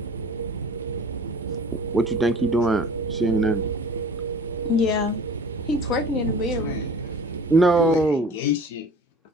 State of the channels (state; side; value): normal; both; correlation 0.44